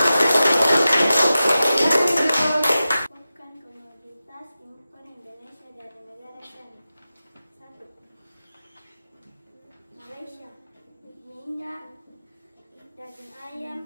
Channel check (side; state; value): both; inverted; correlation -0.93